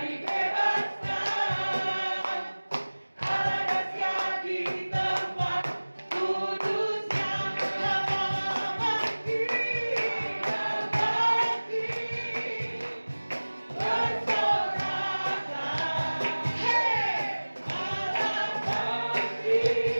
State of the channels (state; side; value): inverted; both; correlation -1.00